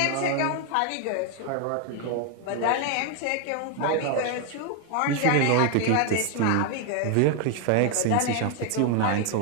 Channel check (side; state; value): both; different; correlation 0.01